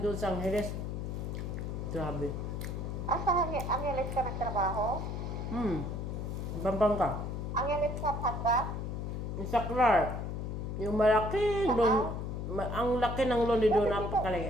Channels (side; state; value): left; noise; hum, 4 dB below the sound